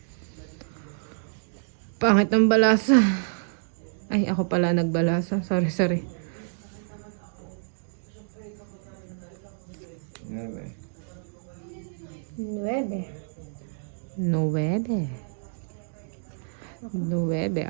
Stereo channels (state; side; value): silent; left; digital silence